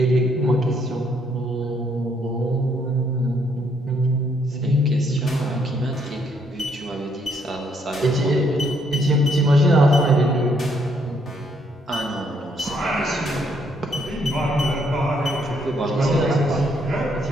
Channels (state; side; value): normal; both; correlation 0.71